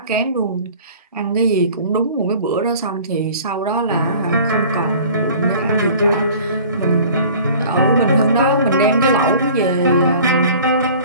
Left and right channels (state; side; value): inverted; both; correlation -0.46